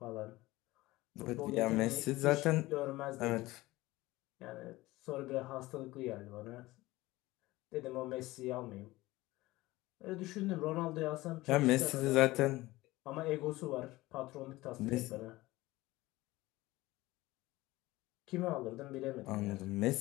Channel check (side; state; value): right; quieter; 19.0 dB